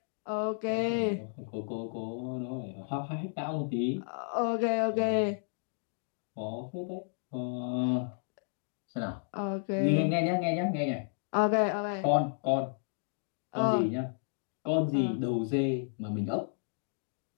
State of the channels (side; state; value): right; silent; digital silence